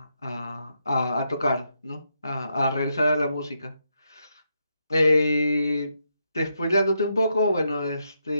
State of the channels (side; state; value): both; inverted; correlation -0.81